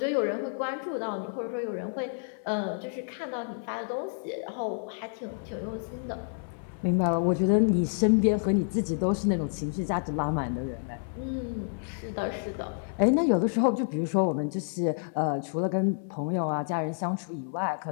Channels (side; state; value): right; silent; 58 dB below the other